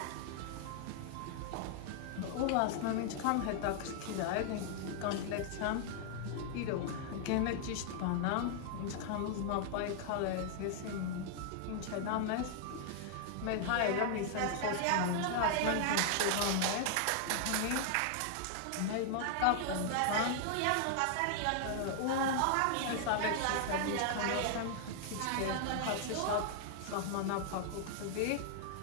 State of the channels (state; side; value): different; both; correlation 0.00